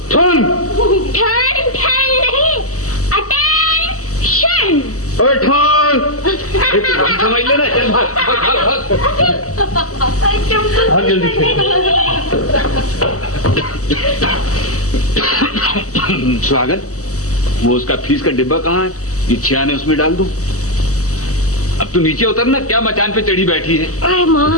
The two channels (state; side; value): late; right; 0.66 ms